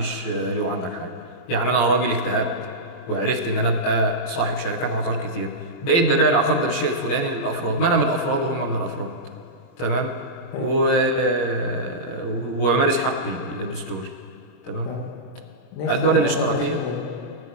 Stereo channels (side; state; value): right; late; 23 ms